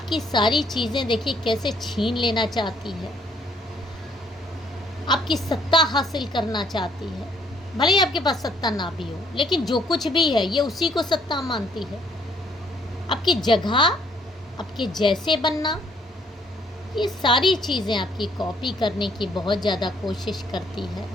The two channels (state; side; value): normal; both; correlation 0.65